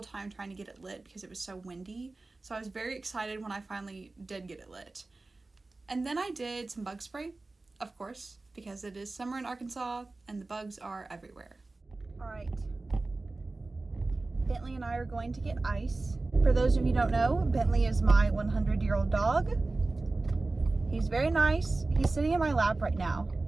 time trying to get it lit because it was so windy, so I was very excited when I finally did get it lit. And then I did some bug spray, of course, because it is summer in Arkansas and the bugs are everywhere. Alright, Bentley and I are going to get ice. For those of you who don't know, Bentley is my 100-year-old dog. He's very nice. He's sitting in my lap right now.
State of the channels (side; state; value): left; quieter; 3.3 dB